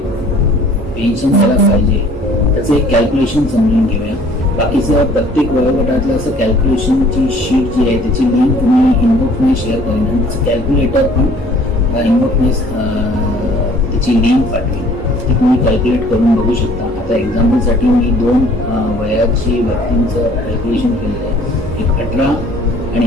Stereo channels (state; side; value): normal; both; correlation 0.55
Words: पेन्शन ज्याला पाहिजे त्याचं एक कॅल्क्युलेशन समजून घेऊया. बाकीचं प्रत्येक वयोगटातलं असं कॅल्क्युलेशनची शीट जी आहे त्याची लिंक मी इनबॉक्समध्ये शेअर करेन आणि त्याचं कॅल्क्युलेटर पण इनबॉक्समध्ये त्याची लिंक पाठवेन. ती तुम्ही कॅल्क्युलेट करून बघू शकता. आता एक्झाम्पलसाठी मी 2 वयाची व्यक्तींचं कॅल्क्युलेशन केलेलं आहे. एक 18